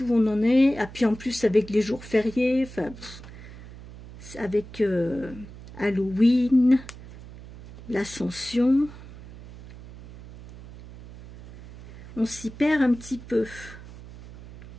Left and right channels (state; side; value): noise; right; hum, 17 dB below the sound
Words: où on en est. Et puis en plus avec les jours fériés, avec Halloween, l'Ascension, on s'y perd un petit peu.